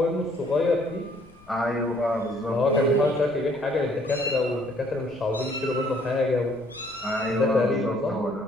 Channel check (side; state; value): left; noise; rumble, 27 dB below the sound